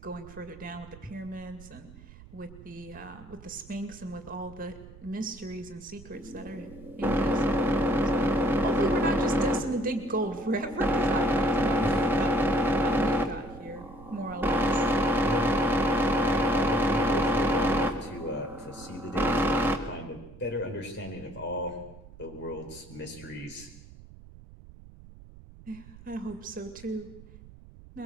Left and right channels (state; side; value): noise; right; rumble, 19 dB below the sound